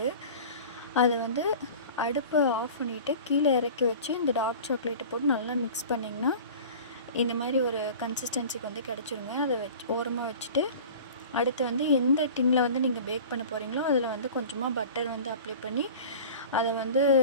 அதை வந்து அடுப்பை ஆஃப் பண்ணிவிட்டு கீழே இறக்கி வச்சு இந்த டார்க் சாக்லேட்டை போட்டு நல்லா மிக்ஸ் பண்ணிங்கன்னா இந்த மாதிரி ஒரு கன்சிஸ்டன்சிக்கு வந்து கிடச்சிருங்க. அதை ஓரமாக வச்சுட்டு அடுத்து வந்து எந்த டின்னில் வந்து நீங்கள் பேக் பண்ண போகிறீங்களோ அதில் வந்து கொஞ்சமாக பட்டர் வந்து அப்ளை பண்ணி அதை வந்து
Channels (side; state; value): both; inverted; correlation -0.39